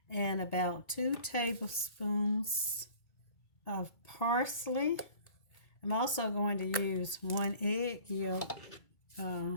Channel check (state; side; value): late; right; 2.3 ms